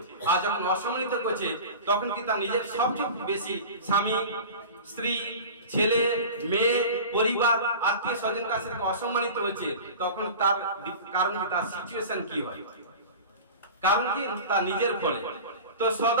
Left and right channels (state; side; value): inverted; both; correlation -0.35